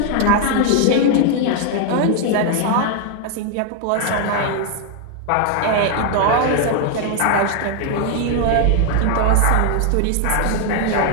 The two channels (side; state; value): both; different; correlation 0.00